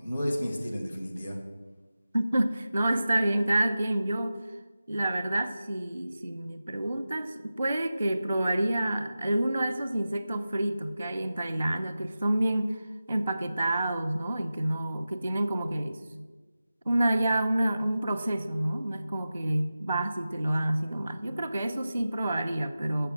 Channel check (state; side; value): inverted; both; correlation -0.94